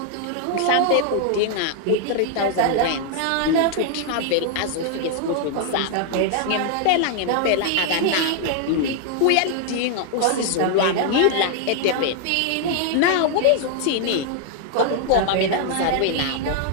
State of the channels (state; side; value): different; both; correlation 0.00